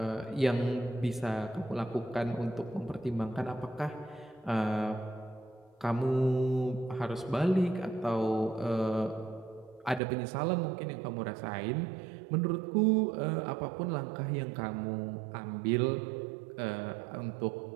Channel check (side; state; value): left; drops out; at 10.0 s